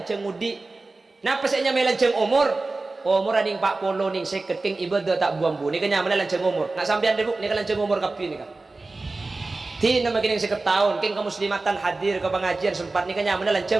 ngudi. Napa saya nyamai lanceng umur? Umur aning 40 ning 50 keng ibadah tak buang-buang. Ini kan nyaman lanceng umur. Nak sampean debuk ni kan lanceng umur kapi ni kan. Ti nama kini seketahun keng kemuslimatan hadir ke pengajian sempat ni kan nyaman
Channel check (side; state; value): left; quieter; 3.4 dB